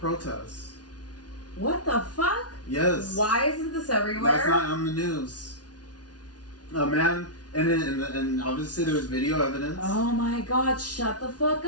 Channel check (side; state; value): right; late; 0.69 ms